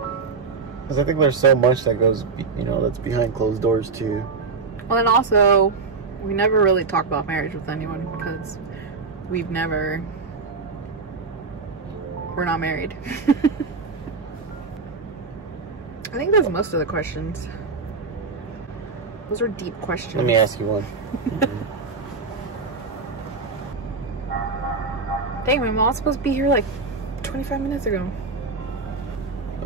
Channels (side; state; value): left; quieter; 4.5 dB